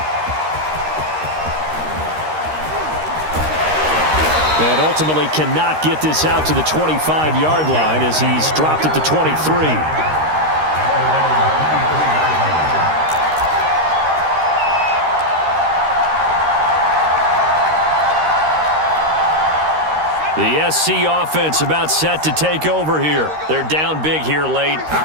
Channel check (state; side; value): late; left; 13 ms